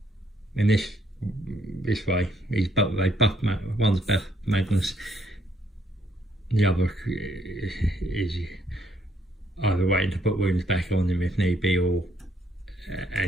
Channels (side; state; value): both; normal; correlation 0.70